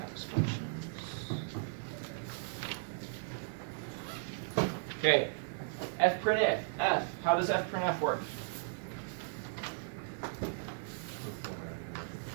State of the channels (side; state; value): left; silent; digital silence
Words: functions. Okay, fprintf. How does fprintf work?